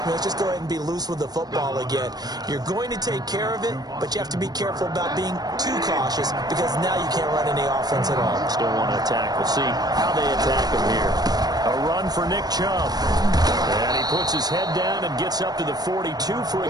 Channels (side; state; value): left; late; 0.19 ms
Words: me. Let's just go ahead and be loose with the football again. You're going to take care of it, but you have to be careful about being too cautious because now you can't run any offense at all. Still want to attack. We'll see how they attack him here. A run for Nick Chubb. And he puts his head down and gets up to the 42 for a